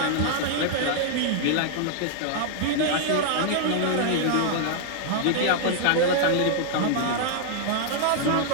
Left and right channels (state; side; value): different; both; correlation -0.01